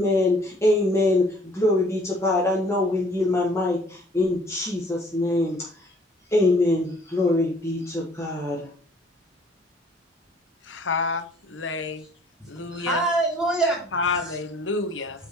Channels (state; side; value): normal; both; correlation 0.57